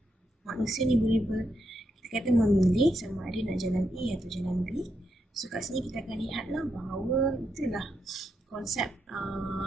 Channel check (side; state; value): both; normal; correlation 0.82